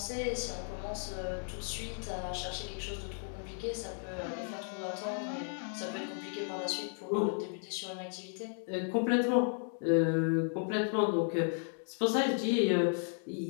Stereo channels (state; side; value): silent; right; 55 dB below the other